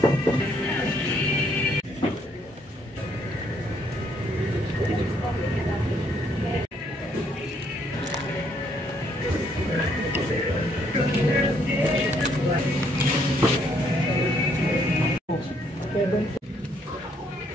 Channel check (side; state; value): both; normal; correlation 0.69